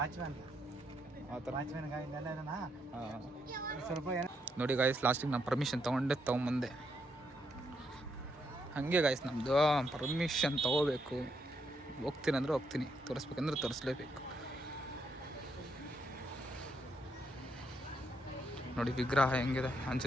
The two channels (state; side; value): normal; both; correlation 0.77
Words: ಆ ಥರ. ವಾಚ್ಮ್ಯಾನ್ ಇಲ್ಲೆಲ್ಲ ಇದನ್ನ ಸ್ವಲ್ಪ ನೋಡಿ ಗಾಯ್ಸ್, ಲಾಸ್ಟಿಗೆ ನಾನು ಪರ್ಮಿಷನ್ ತೊಗೊಂಬಂದೆ. ಹಾಗೆ ಗಾಯ್ಸ್, ನಮ್ಮದು ಪರ್ಮಿಷನ್ ತೊಗೋಬೇಕು. ಹೋಗ್ತೀನಿ ಅಂದರೆ ಹೋಗ್ತೀನಿ, ತೋರಿಸ್ಬೇಕಂದ್ರೆ ತೋರಿಸ್ಲೇಬೇಕು. ನೋಡಿ ವಿಗ್ರಹ ಹೆಂಗಿದೆ,